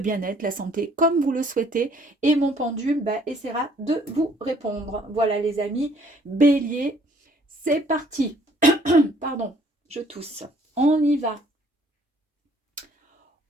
la santé, comme vous le souhaitez. Et mon pendule bah, essaiera de vous répondre. Voilà les amis, bélier, c'est parti. Pardon, je tousse. On y va.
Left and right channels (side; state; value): both; normal; correlation 0.61